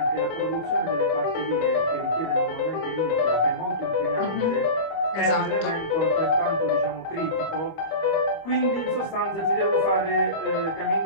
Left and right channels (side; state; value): right; late; 25 ms